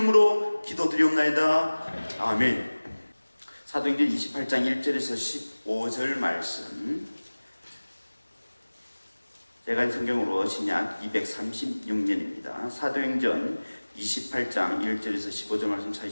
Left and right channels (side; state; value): both; inverted; correlation -1.00